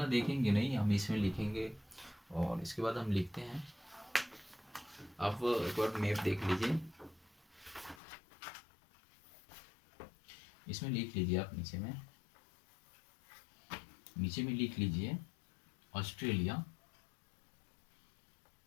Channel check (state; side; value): drops out; right; at 8.0 s